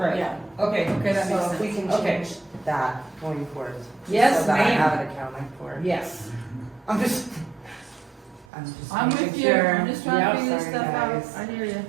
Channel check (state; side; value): drops out; left; at 8.5 s